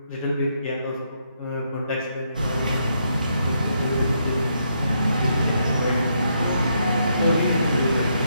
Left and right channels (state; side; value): inverted; both; correlation -0.77